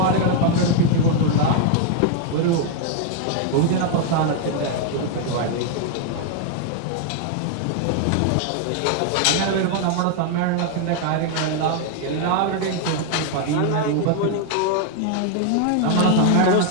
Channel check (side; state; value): both; different; correlation 0.00